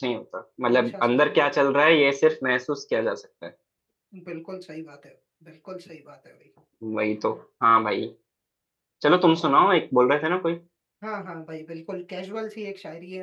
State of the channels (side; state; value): both; identical; correlation 1.00